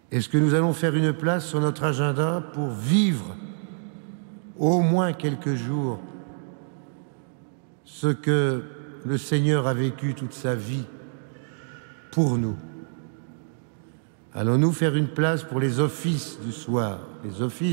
Est-ce que nous allons faire une place sur notre agenda pour vivre au moins quelques jours ce que le Seigneur a vécu toute sa vie pour nous? Allons-nous faire une place pour les offices du soir, les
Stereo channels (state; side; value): silent; left; digital silence